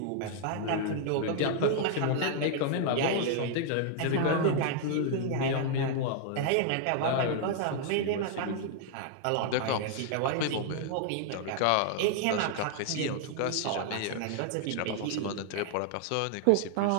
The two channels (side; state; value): both; different; correlation 0.00